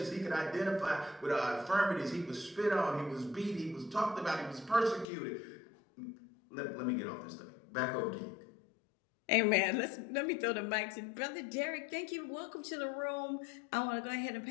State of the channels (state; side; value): drops out; right; at 5.1 s